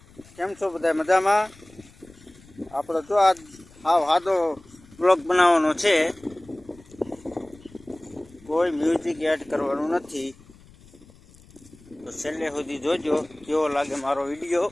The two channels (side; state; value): left; noise; rumble, 25 dB below the sound